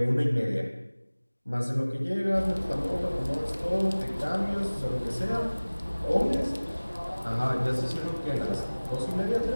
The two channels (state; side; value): inverted; both; correlation -1.00